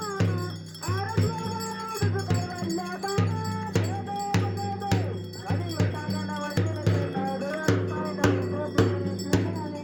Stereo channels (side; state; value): both; identical; correlation 1.00